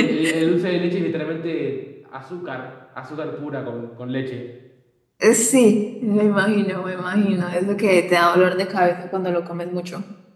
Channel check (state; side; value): identical; both; correlation 1.00